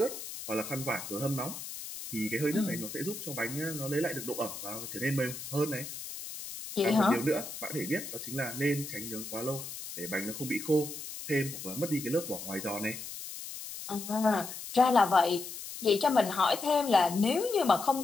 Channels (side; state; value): left; noise; hiss, 9 dB below the sound